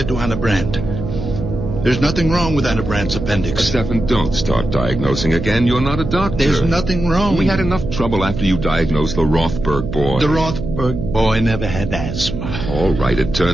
to Anna Brandt. There's nothing wrong with Anna Brandt's appendix. Stefan, don't start diagnosing again. You're not a doctor. There's nothing wrong. We had enough trouble after you diagnosed the Rothberg boy. The Rothberg boy never had asthma. All right, it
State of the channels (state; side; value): noise; right; hum, 6 dB below the sound